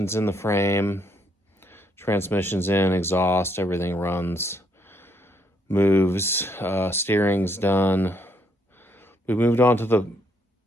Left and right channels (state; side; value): normal; both; correlation 0.72